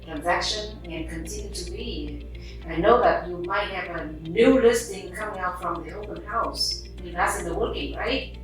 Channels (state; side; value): identical; both; correlation 1.00